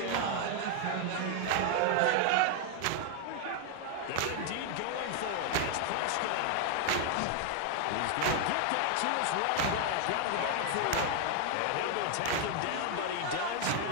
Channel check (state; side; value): different; both; correlation 0.00